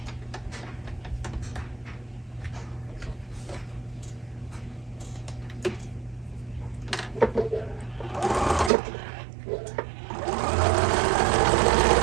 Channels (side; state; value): left; drops out; at 8.7 s